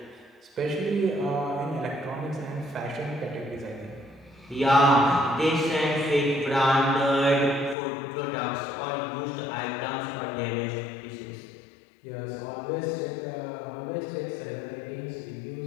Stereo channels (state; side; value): drops out; right; at 7.8 s